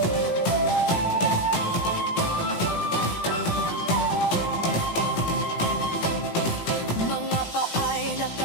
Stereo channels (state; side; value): late; right; 18 ms